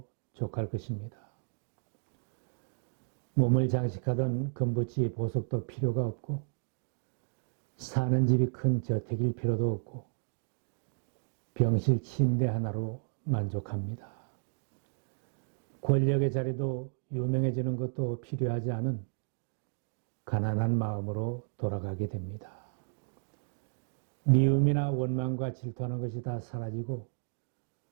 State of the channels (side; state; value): left; silent; 56 dB below the other